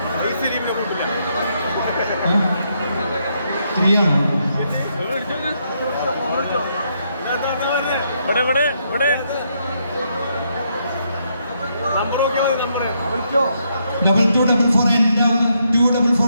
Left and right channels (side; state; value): both; inverted; correlation -0.76